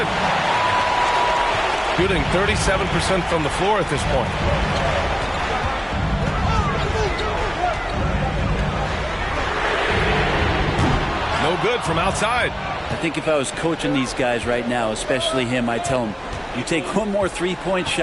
Shooting 37% from the floor at this point. No good from outside. I think if I was coaching these guys right now, especially him, I'd tell him, you take one more three-point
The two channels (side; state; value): both; identical; correlation 1.00